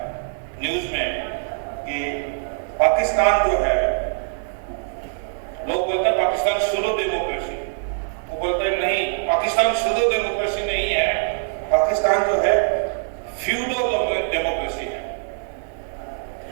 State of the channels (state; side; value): silent; left; digital silence